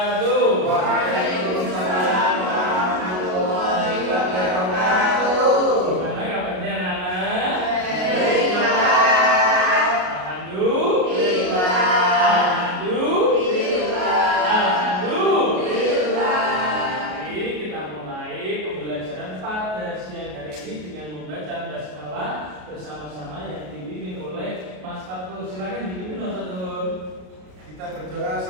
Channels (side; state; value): left; late; 33 ms